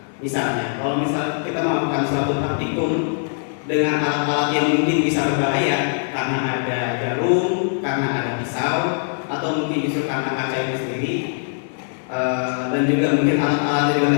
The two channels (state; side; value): silent; right; 59 dB below the other